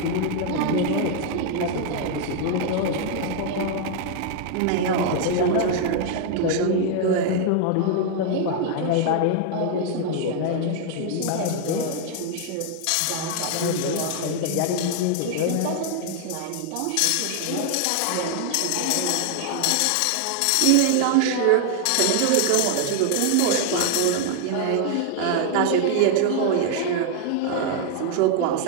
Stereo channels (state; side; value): different; both; correlation 0.00